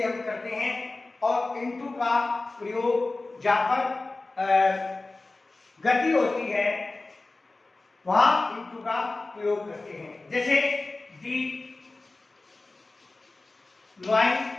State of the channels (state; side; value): quieter; right; 3.3 dB